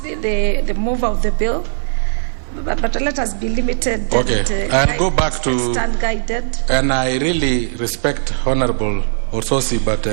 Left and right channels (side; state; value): left; silent; digital silence